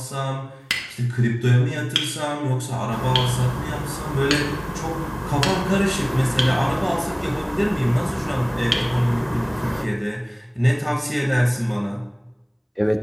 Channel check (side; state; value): both; identical; correlation 1.00